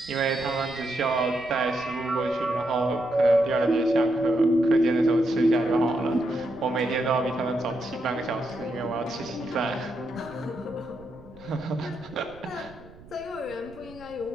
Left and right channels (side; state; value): right; noise; rumble, 22 dB below the sound